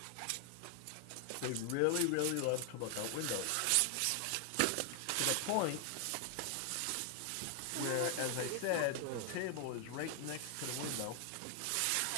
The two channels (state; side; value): different; both; correlation 0.00